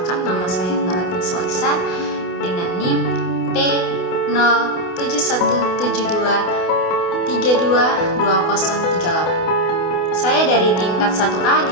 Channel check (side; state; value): right; late; 28 ms